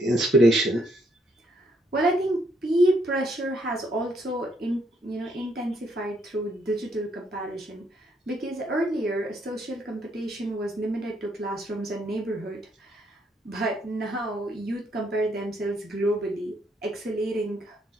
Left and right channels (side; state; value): both; normal; correlation 0.72